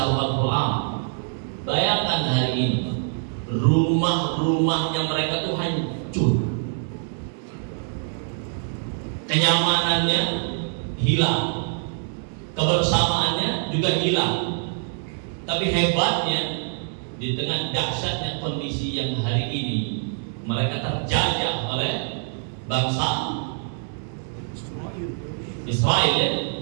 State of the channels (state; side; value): silent; left; digital silence